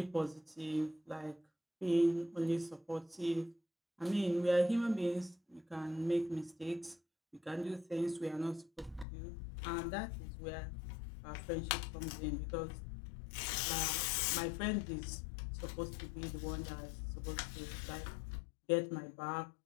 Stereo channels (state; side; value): drops out; right; at 9.1 s